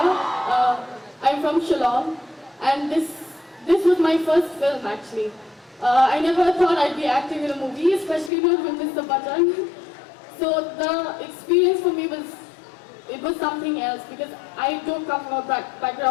I'm from Shillong, and this was my first film actually. I never thought I'd be acting in a movie, especially not with Mr. Bachchan. So the experience for me was something else, because I don't come from a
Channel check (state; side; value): drops out; right; at 8.3 s